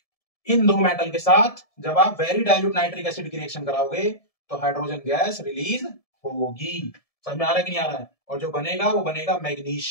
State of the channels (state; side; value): late; right; 1.7 ms